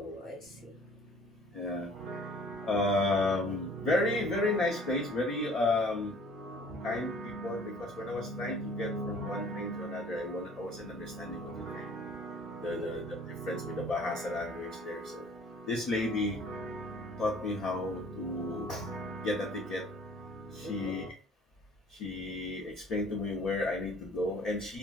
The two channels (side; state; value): both; normal; correlation 0.52